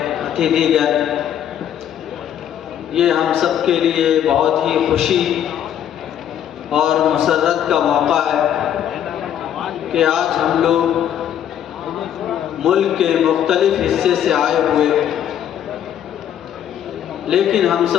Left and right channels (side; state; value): right; quieter; 10.0 dB